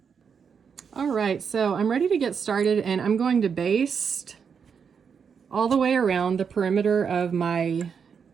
All right, so I'm ready to get started, and I'm going to baste all the way around the perimeter of my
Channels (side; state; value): left; quieter; 6.6 dB